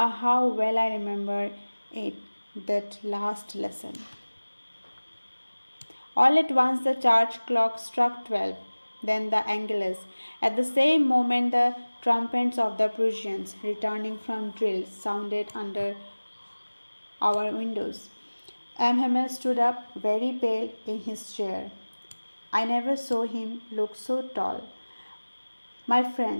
how well I remember it, that last lesson. All at once the church clock struck 12, then the Angelus. At the same moment the trumpets of the Prussians, returning from drill, sounded under our windows. Hamel stood up, very pale, in his chair. I never saw him look so tall. My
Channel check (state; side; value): inverted; both; correlation -1.00